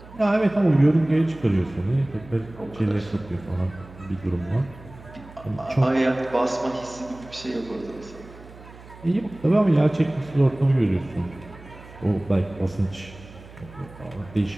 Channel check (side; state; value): right; noise; hum, 19 dB below the sound